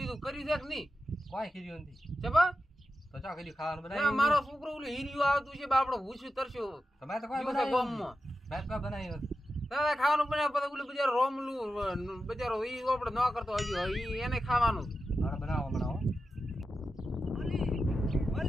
કર્યું છે કે નહીં? કોઈ ખીર્યું નથી ચબા તો ચા ખીર્યું ખાવાનું ના બનાવ્યું મારો છોકરો ઓલું હીરિયું આવતું છે બાપડો ભૂસ્યું તરસ્યો તમે તો કોઈ જીવશે બનાવ્યું ગામમાં. મેં કોઈ બનાવ્યું નથી. દાદા ખાવાનું બનાવે પછી ઓલું બજારો રોમલું બજારો ઈ આપણે ન કરતો હજી ઈ એને ખાવાનું. હાલો બનાવો બનાવો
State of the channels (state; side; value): normal; both; correlation 0.91